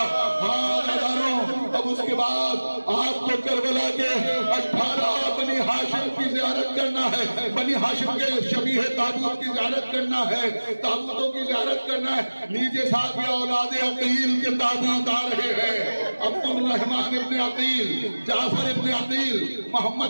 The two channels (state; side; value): inverted; both; correlation -1.00